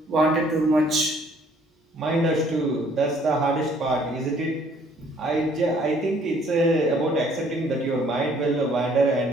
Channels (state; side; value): normal; both; correlation 0.60